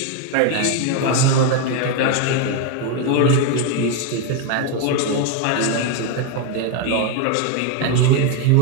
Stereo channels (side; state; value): both; different; correlation 0.01